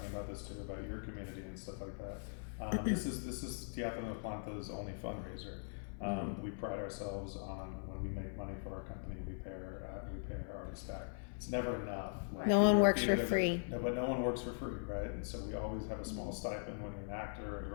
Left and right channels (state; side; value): silent; right; 51 dB below the other